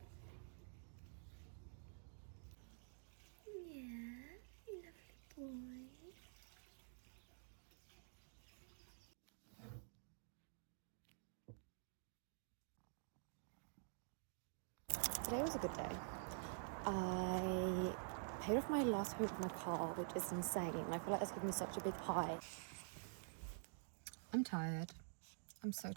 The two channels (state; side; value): silent; left; digital silence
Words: Yeah, lovely boy. Today was a good day. I paid off my last payment of my car, which is insane. And I feel like that's given me such a big high. I'm tired. I'm so